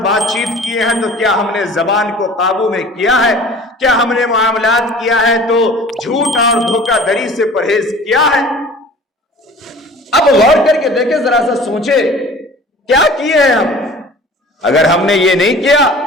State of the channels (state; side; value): normal; both; correlation 0.45